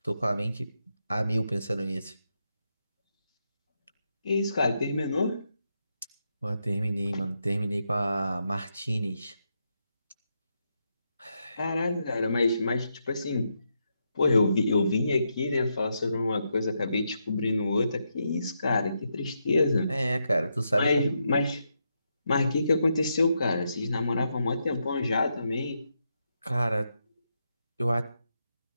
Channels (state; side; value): inverted; both; correlation -0.83